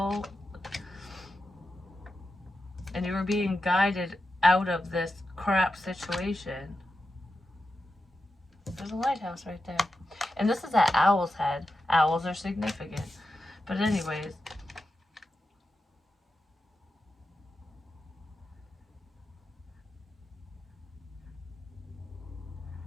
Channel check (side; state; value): both; normal; correlation 0.90